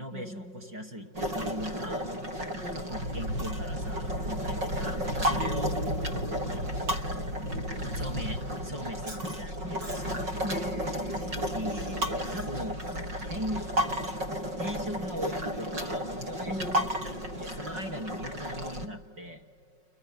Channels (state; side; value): late; left; 5.4 ms